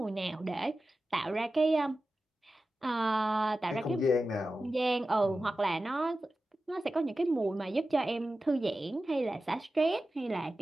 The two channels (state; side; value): normal; both; correlation 0.94